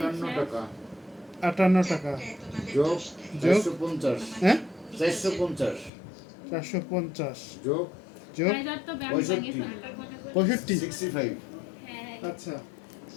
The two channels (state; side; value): drops out; right; at 5.9 s